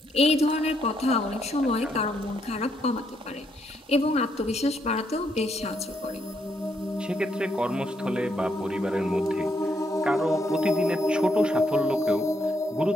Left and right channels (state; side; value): normal; both; correlation 0.76